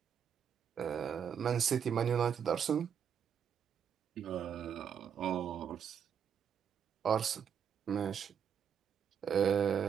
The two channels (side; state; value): left; quieter; 7.9 dB